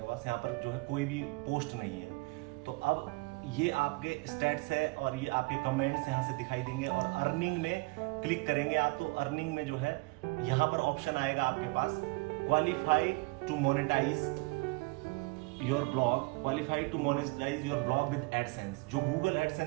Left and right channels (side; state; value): left; quieter; 26.0 dB